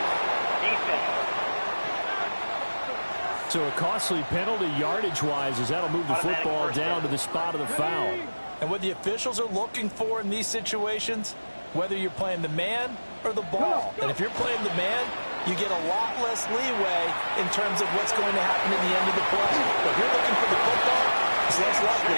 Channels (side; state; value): both; inverted; correlation -1.00